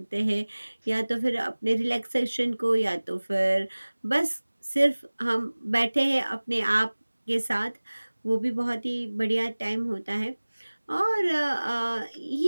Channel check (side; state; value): both; inverted; correlation -1.00